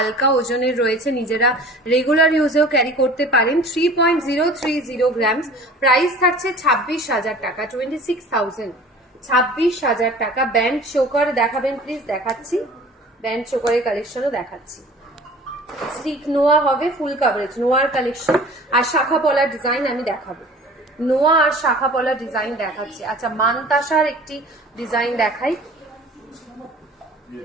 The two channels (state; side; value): normal; both; correlation 0.45